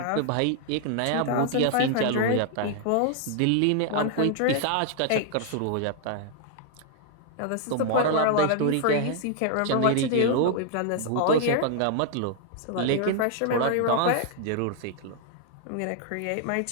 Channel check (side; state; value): both; different; correlation 0.00